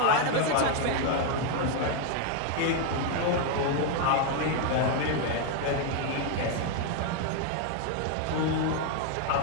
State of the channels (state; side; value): different; both; correlation 0.01